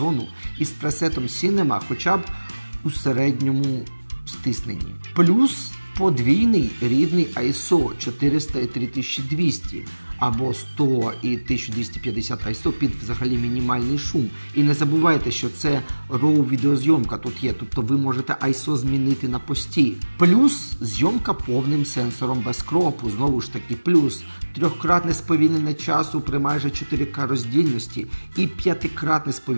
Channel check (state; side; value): inverted; both; correlation -1.00